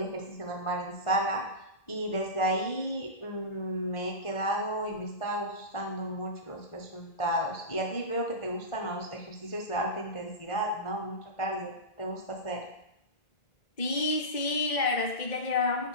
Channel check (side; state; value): right; late; 2.1 ms